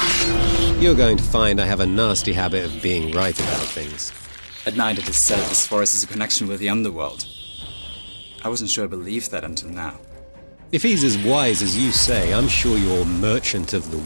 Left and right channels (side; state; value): both; inverted; correlation -1.00